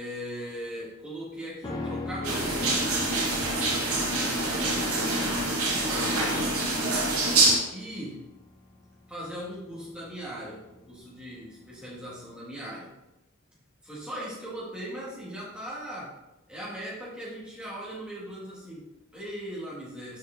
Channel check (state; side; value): normal; both; correlation 0.17